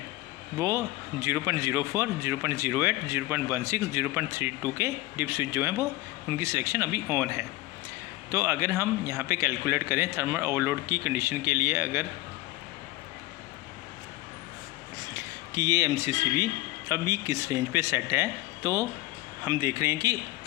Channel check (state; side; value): quieter; right; 18.5 dB